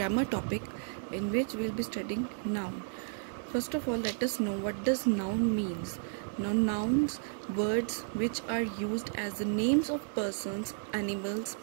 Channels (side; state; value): left; silent; digital silence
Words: topic in which we'll be studying noun. First of all, let us know what does noun means. Now nouns, words which are used as the names of persons, animals,